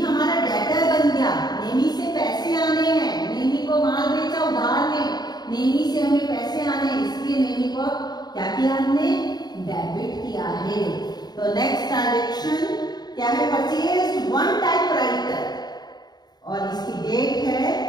हमारा debtor बन गया, नेमी से पैसे आने हैं, नेमी को माल बेचा उधार में, नेमी से हमें पैसे आने हैं, इसलिए नेमी को क्या किया हमने? डेबिट किया है। तो नेक्स्ट ट्रांजेक्शन क्या है? परचेज वन टाइपराइटर और इसकी डेट है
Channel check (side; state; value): right; late; 0.20 ms